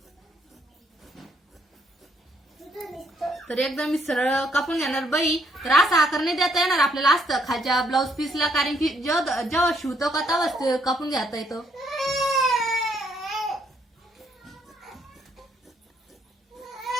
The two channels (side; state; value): both; normal; correlation 0.70